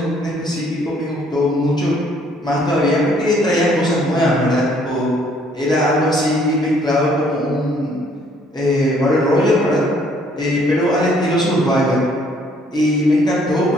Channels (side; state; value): both; normal; correlation 0.63